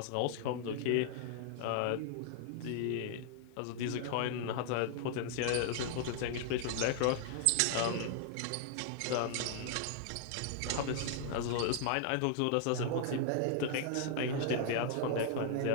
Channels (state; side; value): different; both; correlation -0.01